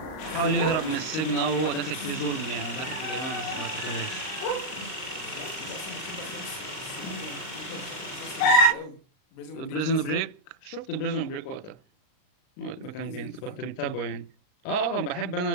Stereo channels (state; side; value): late; right; 39 ms